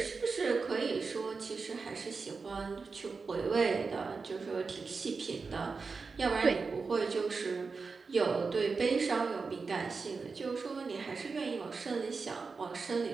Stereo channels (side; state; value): left; quieter; 4.6 dB